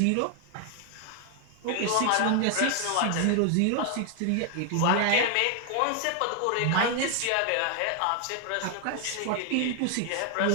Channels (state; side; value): different; both; correlation 0.00